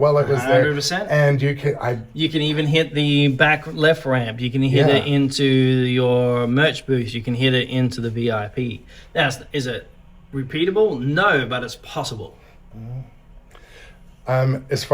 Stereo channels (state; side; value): identical; both; correlation 1.00